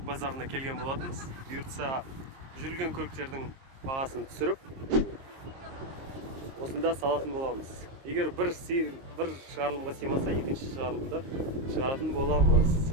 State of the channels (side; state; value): left; late; 22 ms